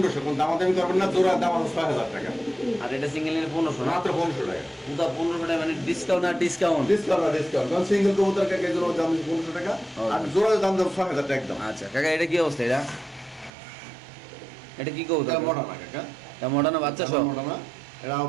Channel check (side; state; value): left; drops out; at 13.5 s